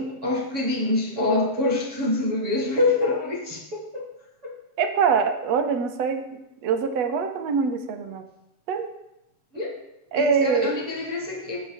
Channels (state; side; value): late; left; 7.2 ms